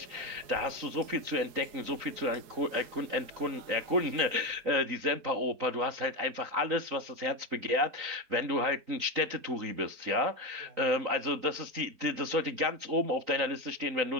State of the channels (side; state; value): left; late; 3.9 ms